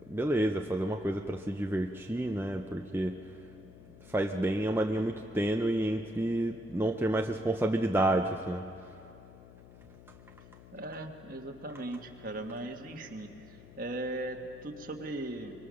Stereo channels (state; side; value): noise; left; hum, 18 dB below the sound